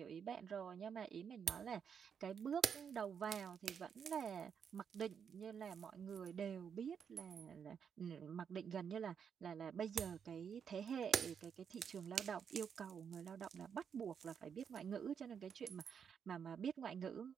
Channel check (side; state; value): left; quieter; 7.3 dB